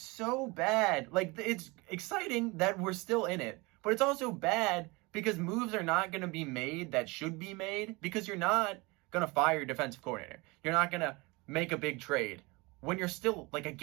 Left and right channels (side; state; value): left; quieter; 25.1 dB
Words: bad. Like, it's exciting that we're still in it, but it's also bad because moves are not going to be made that should be made because you're not going to fire your defensive coordinator. You're not going to make a big trade when you're still, like, a